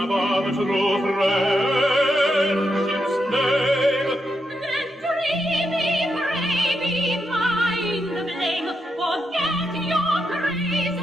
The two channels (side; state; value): both; normal; correlation 0.83